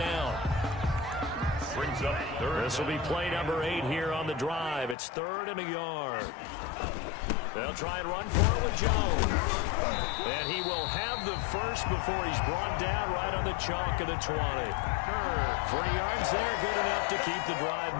Brings up third. This will be play number 8 here on the drive. It's third and a yard. They'll try and run for it with Jones. And he will have the first before he's brought down right on the chalk of the 20. 3 yards there, good enough to keep the drive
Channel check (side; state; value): right; drops out; at 5.0 s